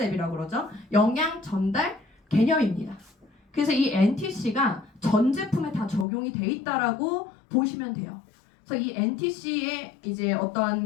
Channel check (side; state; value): right; drops out; at 6.1 s